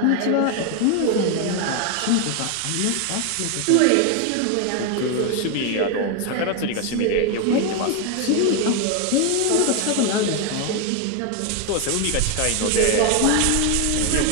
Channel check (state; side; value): different; both; correlation 0.01